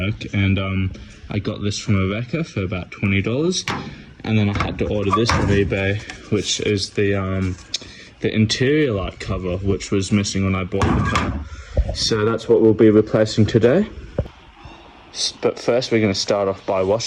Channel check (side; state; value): both; identical; correlation 1.00